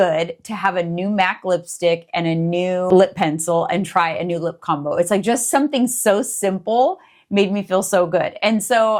to have a new MAC lipstick and a new lip pencil and try a new lip combo. It's like just something so simple made me feel so good. And so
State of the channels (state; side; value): identical; both; correlation 1.00